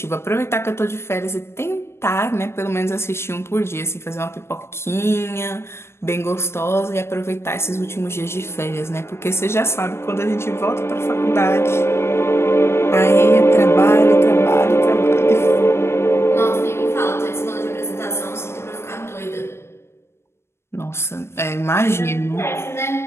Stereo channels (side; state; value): right; late; 0.12 ms